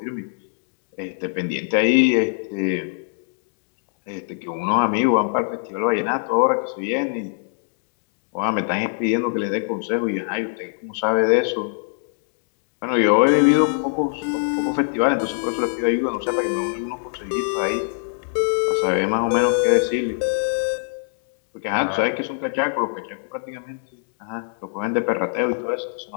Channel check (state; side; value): silent; right; digital silence